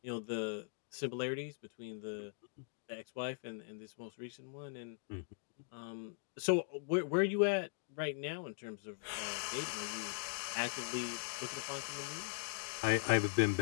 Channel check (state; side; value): silent; right; digital silence